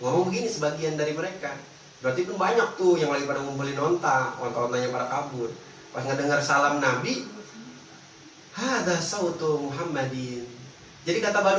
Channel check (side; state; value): both; identical; correlation 1.00